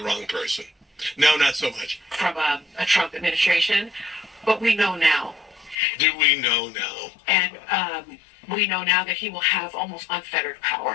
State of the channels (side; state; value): right; drops out; at 5.8 s